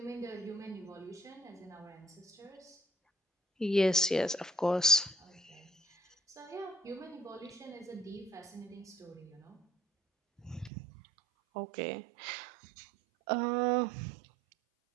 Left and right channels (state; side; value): drops out; left; at 10.7 s